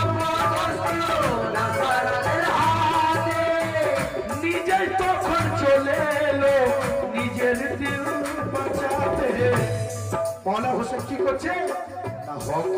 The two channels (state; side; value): identical; both; correlation 1.00